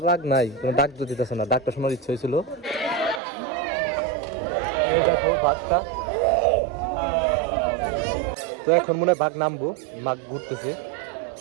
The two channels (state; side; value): drops out; left; at 3.2 s